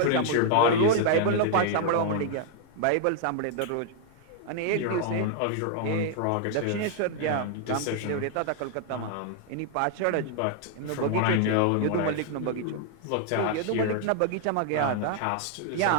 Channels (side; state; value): both; different; correlation 0.00